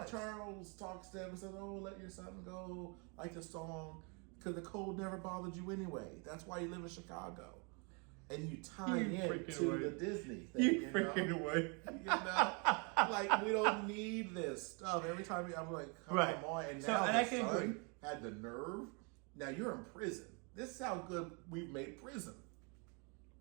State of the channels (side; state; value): left; quieter; 34.1 dB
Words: Charles talks to him and says, oh, let your son go. Like the song. Because the cold never bothered you anyway. That's why you live in Chicago. And you tie in to the Disney thing. You freaking away. Like, we don't need this stuff. Every time I'm like, come on. And now the son had the nerve. Now you're in prison. This is how good we've made prison.